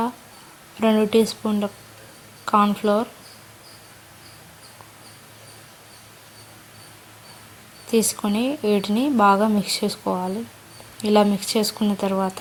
2 టీ స్పూన్ల కార్న్ఫ్లోర్ తీసుకొని వీటిని బాగా మిక్స్ చేసుకోవాలి. ఇలా మిక్స్ చేసుకున్న తర్వాత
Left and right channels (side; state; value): both; identical; correlation 1.00